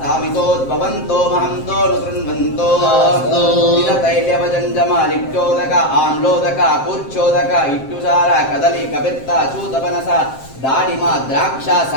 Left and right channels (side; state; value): right; late; 7.6 ms